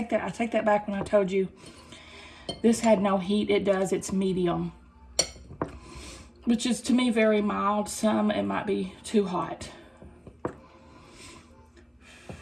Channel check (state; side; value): identical; both; correlation 1.00